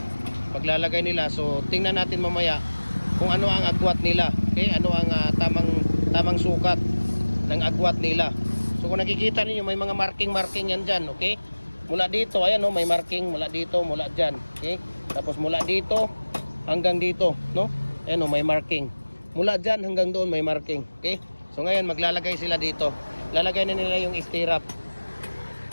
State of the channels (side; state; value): both; inverted; correlation -1.00